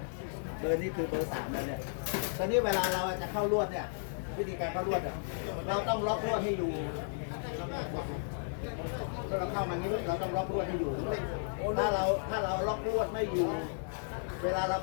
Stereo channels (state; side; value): silent; right; digital silence